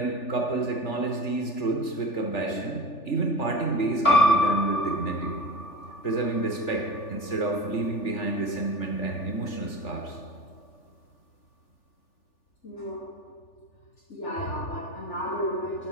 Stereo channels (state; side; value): late; right; 3.4 ms